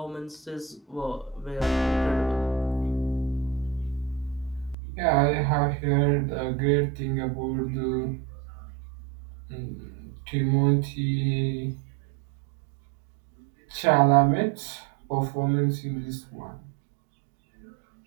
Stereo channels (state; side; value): drops out; left; at 4.8 s